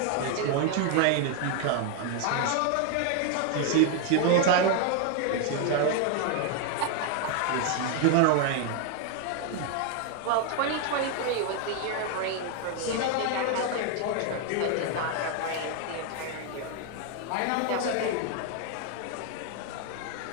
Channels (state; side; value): different; both; correlation 0.01